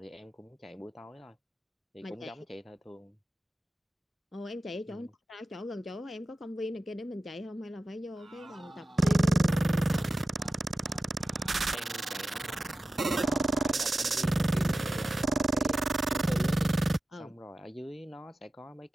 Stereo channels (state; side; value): normal; both; correlation 0.93